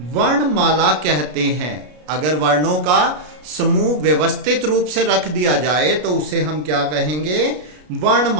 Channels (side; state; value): left; late; 33 ms